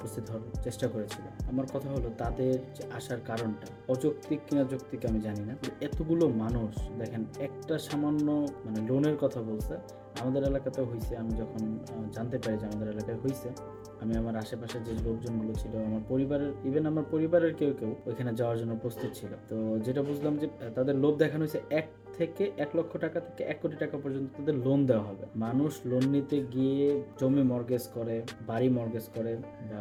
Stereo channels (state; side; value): identical; both; correlation 1.00